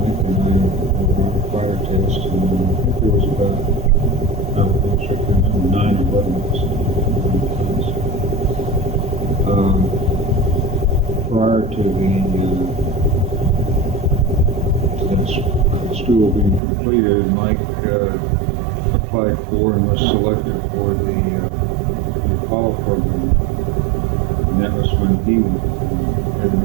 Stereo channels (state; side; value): drops out; left; at 16.6 s